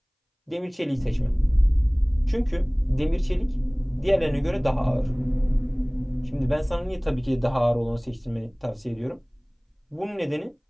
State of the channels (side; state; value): both; identical; correlation 1.00